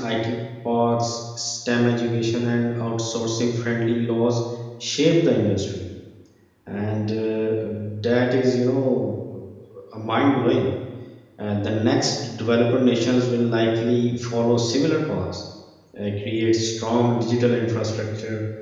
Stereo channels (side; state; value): both; identical; correlation 1.00